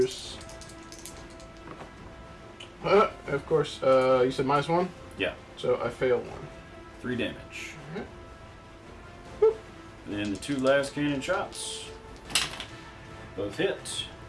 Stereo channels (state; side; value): identical; both; correlation 1.00